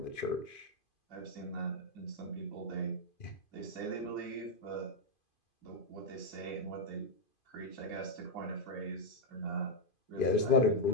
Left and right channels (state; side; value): late; right; 2.5 ms